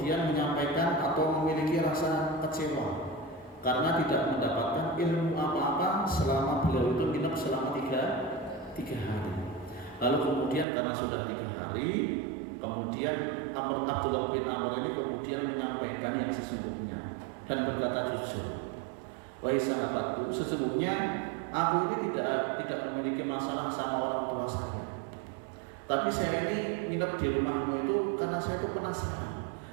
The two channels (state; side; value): drops out; left; at 10.7 s